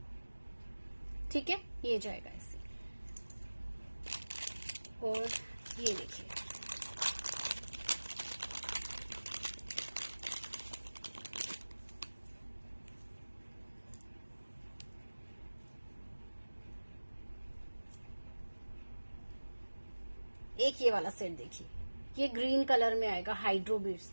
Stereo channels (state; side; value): inverted; both; correlation -1.00